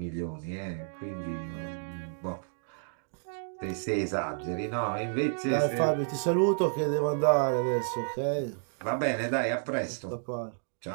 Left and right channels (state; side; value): silent; left; digital silence